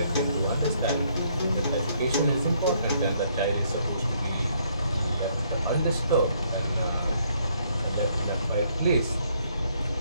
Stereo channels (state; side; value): inverted; both; correlation -0.69